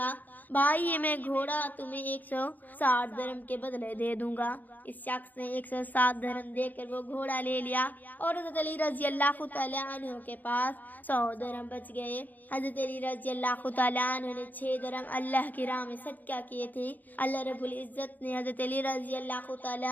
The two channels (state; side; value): late; right; 0.083 ms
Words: بھائی، یہ میں گھوڑا تمہیں 160 درہم کے بدلے دے دوں گا۔ اس شخص نے 160 درہم دے کر وہ گھوڑا لے لیا اور حضرت علی رضی اللہ تعالیٰ عنہ کے پاس 100 درہم بچ گئے۔ حضرت علی رضی اللہ تعالیٰ عنہ نے 6 درہم اللہ کی راہ میں صدقہ کیے تھے۔ اللہ رب العزت نے حضرت علی رضی اللہ